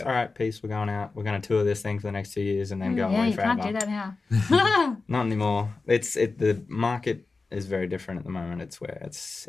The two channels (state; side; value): quieter; right; 3.9 dB